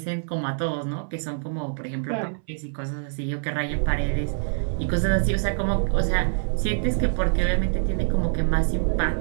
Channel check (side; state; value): left; silent; 62 dB below the other